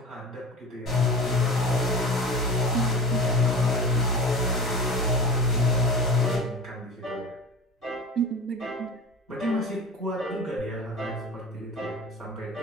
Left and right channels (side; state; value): both; normal; correlation 0.32